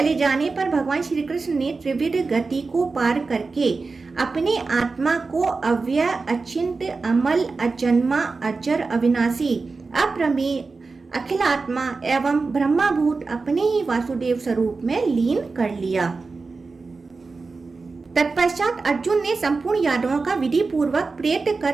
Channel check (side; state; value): left; quieter; 4.1 dB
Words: जाने पर भगवान श्री कृष्ण ने त्रिविध गति को पार करके अपनी आत्मा को अव्यय, अचिंत्य, अमल, अजन्मा, अजर, अविनाशी, अप्रमेय, अखिलात्मा एवं ब्रह्माभूत अपने ही वासुदेव स्वरूप में लीन कर लिया। तत्पश्चात अर्जुन ने संपूर्ण यादवों का विधि पूर्वक प्रेत